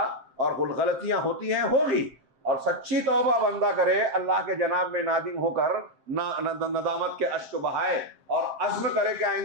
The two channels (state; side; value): late; left; 7.6 ms